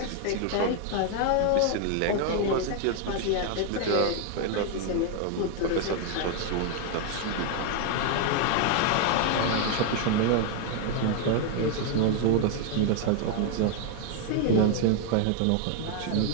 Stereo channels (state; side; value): different; both; correlation 0.01